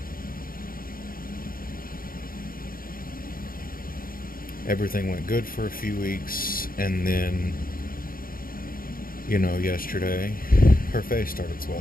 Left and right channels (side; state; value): right; late; 0.42 ms